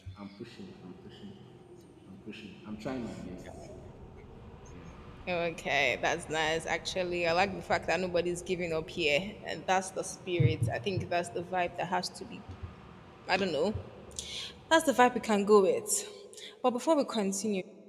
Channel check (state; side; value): identical; both; correlation 1.00